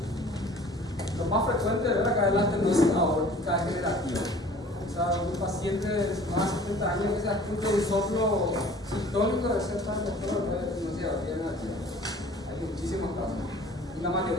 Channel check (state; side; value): normal; both; correlation 0.48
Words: Lo más frecuente de ver acá es la estenosis aórtica degenerativa. O sea, un paciente de más de 70 años que se escucha un soplo sistólico de cierta doctora de estenosis aórtica degenerativa. Hay muchísimos casos. Y la